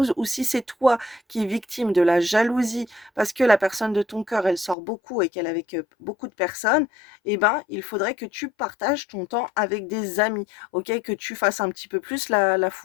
Ou si c'est toi qui es victime de la jalousie parce que la personne de ton cœur, elle sort beaucoup et qu'elle est avec beaucoup de personnes, eh ben, il faudrait que tu partages ton temps avec des amis. OK, que tu fasses un petit peu plus la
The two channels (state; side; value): drops out; right; at 4.8 s